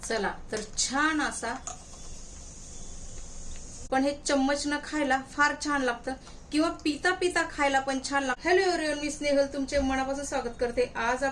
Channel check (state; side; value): identical; both; correlation 1.00